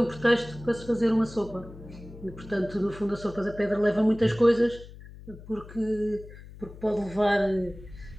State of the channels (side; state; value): left; noise; hum, 17 dB below the sound